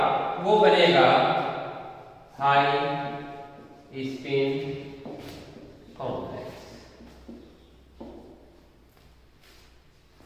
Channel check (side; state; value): both; identical; correlation 1.00